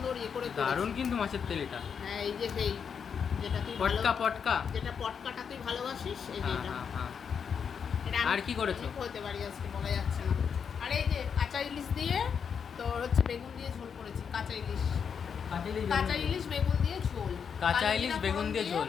ইয়ে করে দারুণ কিন্তু মাছের তেল এটা। হ্যাঁ, এই যে সেই যেটা তুই পটকা পটকা, যেটা পটকাটা তুই ভালোবাসিস, এই যে এটা। এটা আর কি করেছো? হতে পারি আজকে বলা যাচ্ছে না। আর এই যে কাঁচা ইলিশ দিয়ে তোর হচ্ছে বেগুন দিয়ে ঝোল করেছি, কাঁচা ইলিশ বেগুন দিয়ে ঝোল। কাঁচা ইলিশ বেগুন দিয়ে ঝোল,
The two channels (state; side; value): quieter; right; 6.9 dB